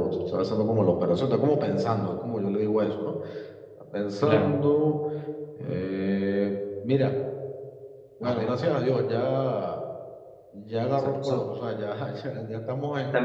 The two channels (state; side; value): identical; both; correlation 1.00